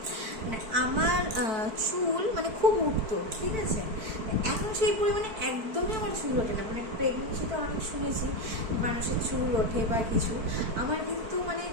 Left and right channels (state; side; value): late; left; 4.5 ms